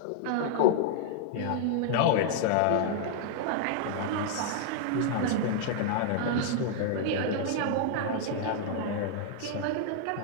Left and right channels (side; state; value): both; different; correlation -0.01